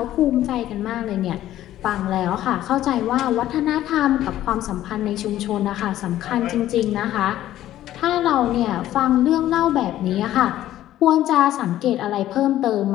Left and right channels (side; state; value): right; quieter; 13.3 dB